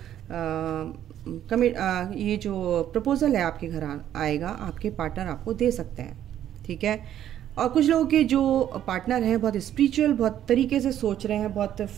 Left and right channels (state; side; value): quieter; left; 11.1 dB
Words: ये जो प्रपोजल है आपके घर आएगा, आपके पार्टनर आपको दे सकते हैं। ठीक है, और कुछ लोगों के जो पार्टनर हैं बहुत स्पिरिचुअल, बहुत तरीके से सोच रहे हैं, बहुत